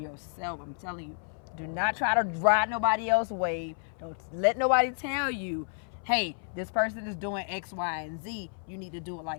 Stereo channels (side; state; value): right; silent; 57 dB below the other